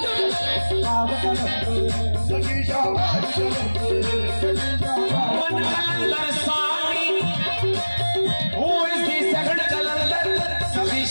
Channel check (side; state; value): both; inverted; correlation -1.00